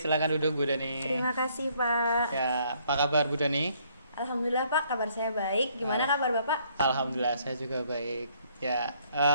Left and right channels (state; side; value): inverted; both; correlation -0.66